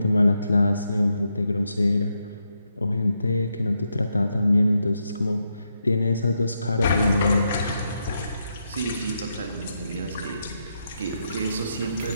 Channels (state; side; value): inverted; both; correlation -0.82